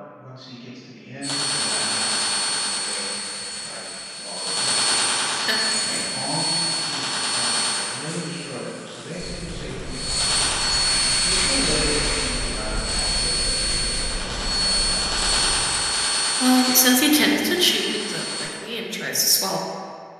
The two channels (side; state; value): both; identical; correlation 1.00